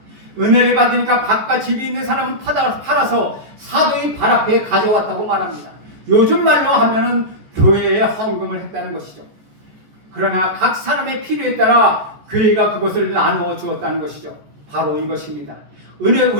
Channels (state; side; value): late; left; 14 ms